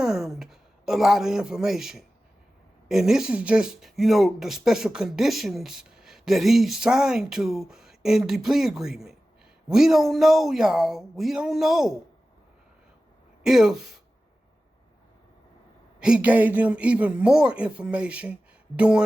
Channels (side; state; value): both; normal; correlation 0.95